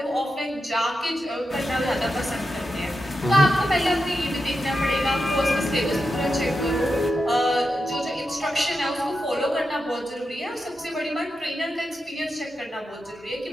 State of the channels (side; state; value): both; normal; correlation 0.88